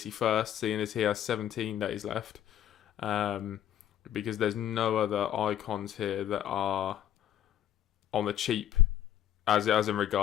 first, seeing as he has 17 days left. Because there's no other icons here that are on the cheap, as in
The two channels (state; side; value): quieter; right; 11.0 dB